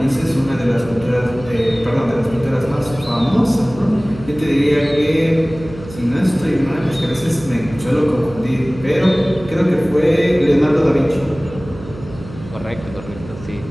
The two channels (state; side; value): noise; right; hum, 15 dB below the sound